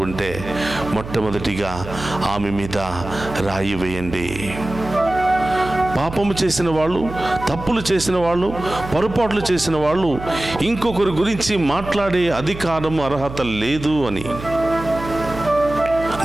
ఉంటే మొట్టమొదటిగా ఆమె మీద రాయి వేయండి. పాపము చేసిన వాళ్ళు, తప్పులు చేసిన వాళ్ళు, పొరపాట్లు చేసిన వాళ్ళు ఇంకొకరి గురించి మాట్లాడే అధికారం, అర్హత లేదు అని.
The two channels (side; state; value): right; noise; hum, 11 dB below the sound